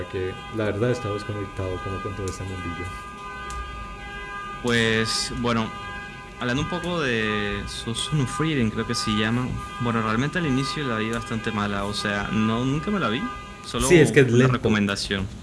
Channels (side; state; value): both; identical; correlation 1.00